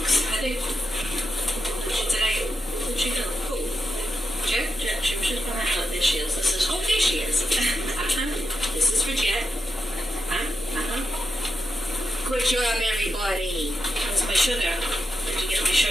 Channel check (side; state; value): both; normal; correlation 0.87